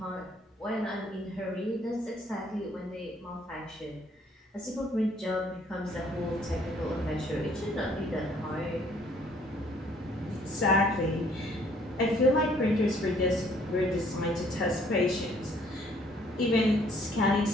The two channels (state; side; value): normal; both; correlation 0.62